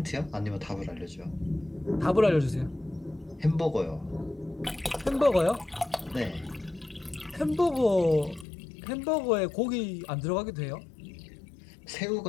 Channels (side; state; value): right; drops out; at 8.5 s